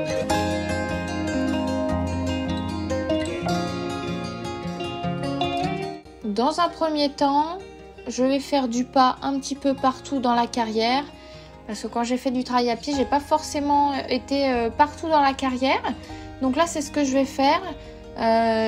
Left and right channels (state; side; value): identical; both; correlation 1.00